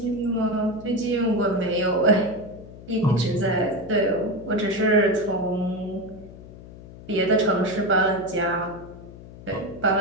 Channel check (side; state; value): left; noise; hum, 17 dB below the sound